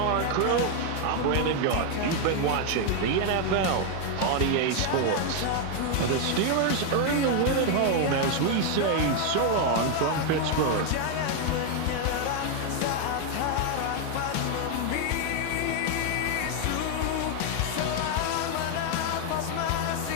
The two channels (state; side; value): different; both; correlation 0.01